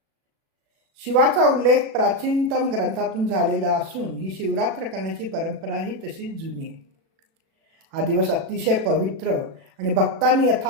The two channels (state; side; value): late; left; 36 ms